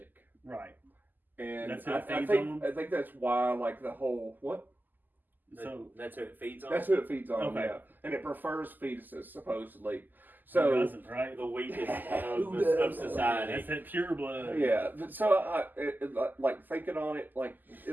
Right. And That's who I it feeds think on? I think that's why like the whole what. So That's who it feeds on. That's who it feeds on, Okay. yeah. And it prefers fetuses, supposedly. who So, doesn't, right? The weakest Who of does? society. That's that pure blood. yeah. So, like, thinking on it, like, it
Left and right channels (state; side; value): late; left; 0.087 ms